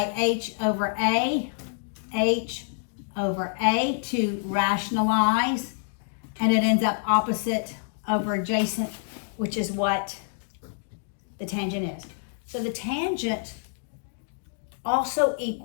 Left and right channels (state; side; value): silent; right; digital silence